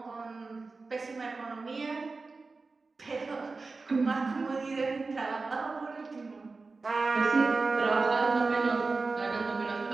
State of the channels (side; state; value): left; quieter; 3.9 dB